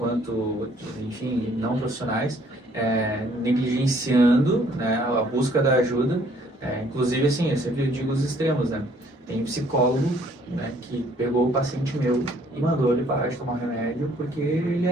enfim, não profissionais, negligenciando, né, a busca da ajuda. Inclusive, assim, eu sempre digo os extremos, né? Tem psicólogo, né, que pegou o paciente meu e mandou ele parar de tomar remédio porque ele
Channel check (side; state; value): both; normal; correlation 0.62